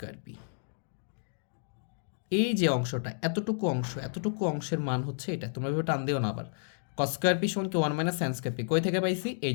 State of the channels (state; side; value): silent; right; digital silence